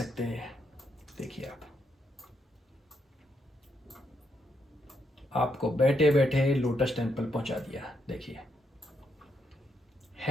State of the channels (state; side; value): normal; both; correlation 0.78